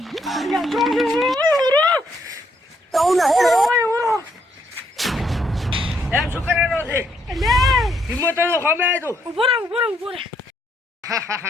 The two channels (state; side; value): normal; both; correlation 0.73